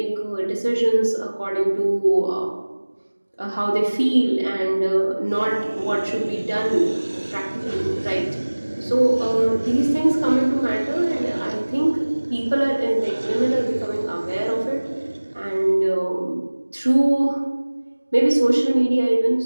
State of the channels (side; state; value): both; inverted; correlation -1.00